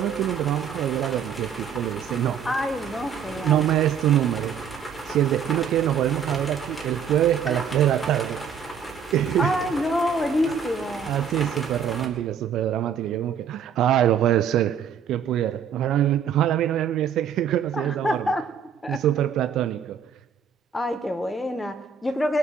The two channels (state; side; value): quieter; left; 7.3 dB